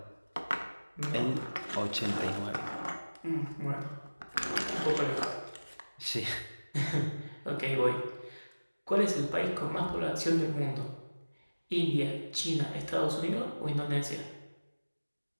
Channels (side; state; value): both; inverted; correlation -1.00